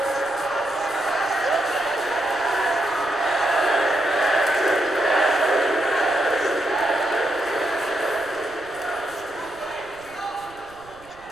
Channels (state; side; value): noise; right; rumble, 25 dB below the sound